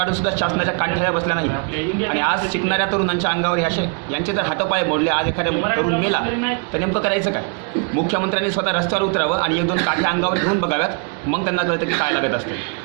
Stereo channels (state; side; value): quieter; left; 36.4 dB